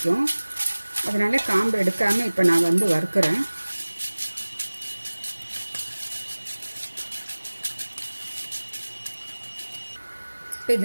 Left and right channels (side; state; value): both; inverted; correlation -1.00